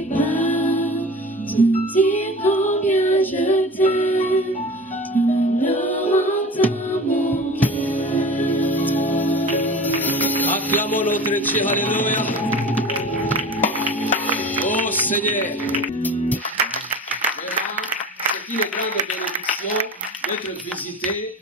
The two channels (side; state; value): both; normal; correlation 0.36